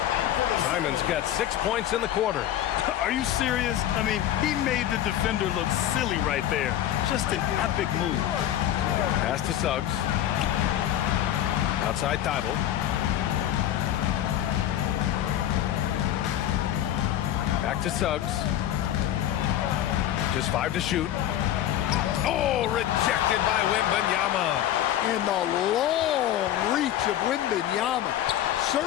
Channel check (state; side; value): quieter; right; 11.9 dB